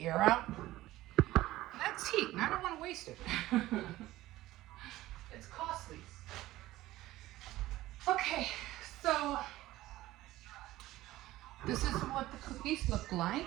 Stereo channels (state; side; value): quieter; left; 16.5 dB